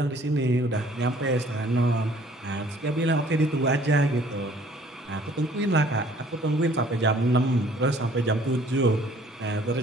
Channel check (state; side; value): normal; both; correlation 0.56